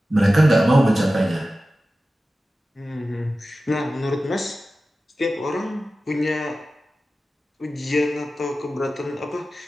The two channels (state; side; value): normal; both; correlation 0.95